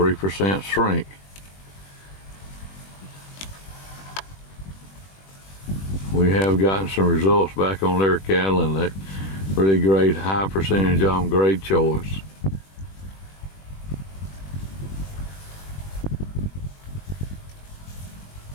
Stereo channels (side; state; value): right; late; 21 ms